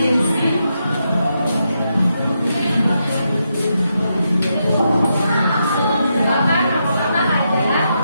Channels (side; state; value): both; inverted; correlation -0.83